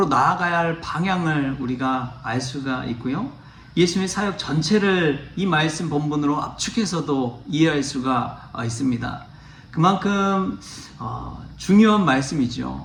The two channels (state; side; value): identical; both; correlation 1.00